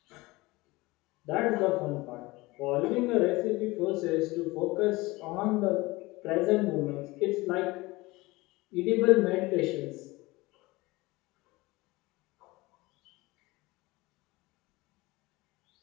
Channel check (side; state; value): right; quieter; 21.6 dB